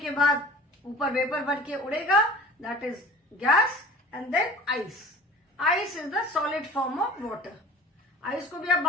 बाद ऊपर वेपर बन के उड़ेगा, that is gas, and then ice. Ice is the solid form of water. Ice को भी आप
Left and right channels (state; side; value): normal; both; correlation 0.44